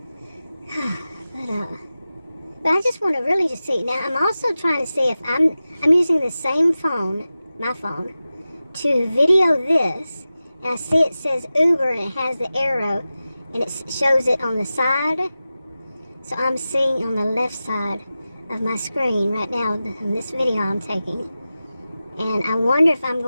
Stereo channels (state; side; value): inverted; both; correlation -0.94